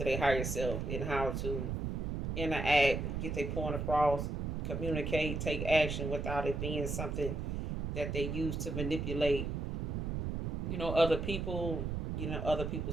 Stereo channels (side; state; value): right; noise; rumble, 2 dB below the sound